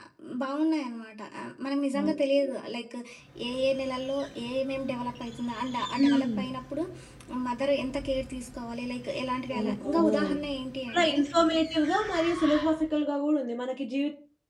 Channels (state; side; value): identical; both; correlation 1.00